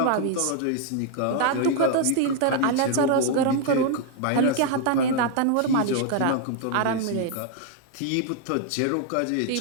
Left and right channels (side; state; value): both; different; correlation 0.00